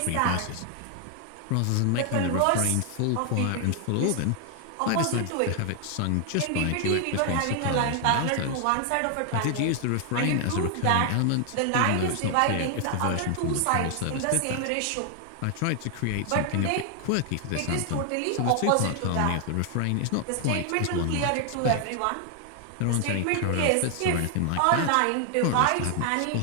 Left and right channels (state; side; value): different; both; correlation 0.00